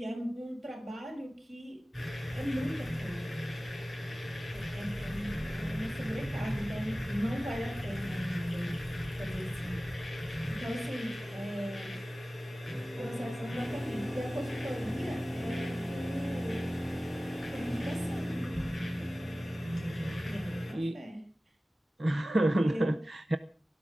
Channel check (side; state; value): both; normal; correlation 0.97